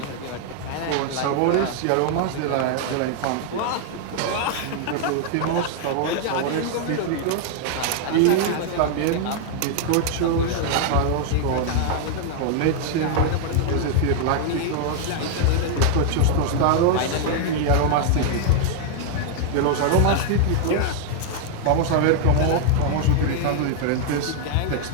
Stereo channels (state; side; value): different; both; correlation 0.00